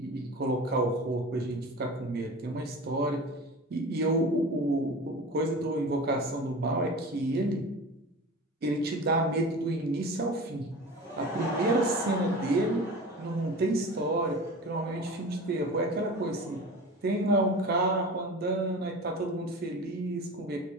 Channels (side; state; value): both; normal; correlation 0.34